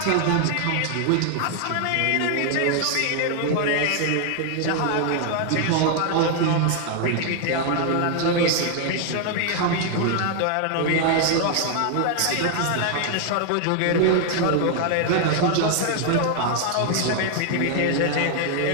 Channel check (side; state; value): both; different; correlation 0.00